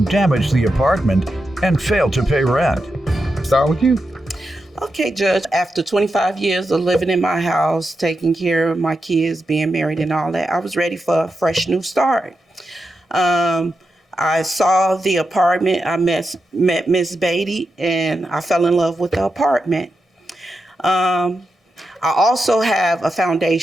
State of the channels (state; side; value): normal; both; correlation 0.88